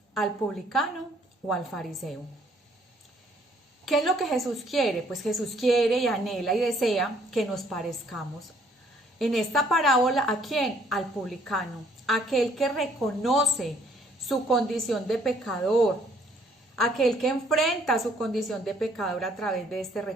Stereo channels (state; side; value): normal; both; correlation 0.63